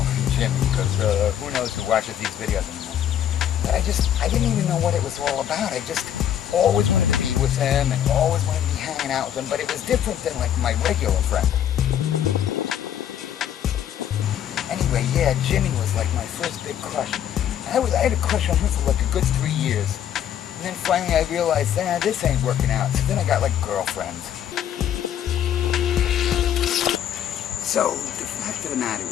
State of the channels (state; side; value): quieter; right; 10.1 dB